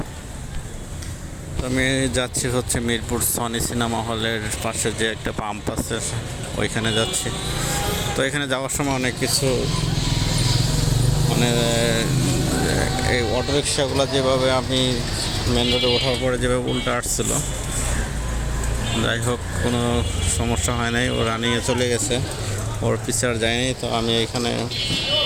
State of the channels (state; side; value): identical; both; correlation 1.00